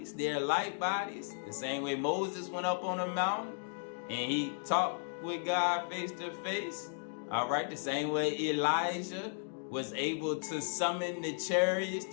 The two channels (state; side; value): silent; right; digital silence